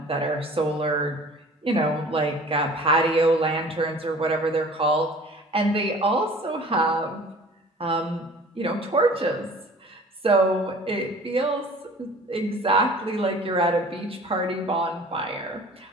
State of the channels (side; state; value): both; normal; correlation 0.46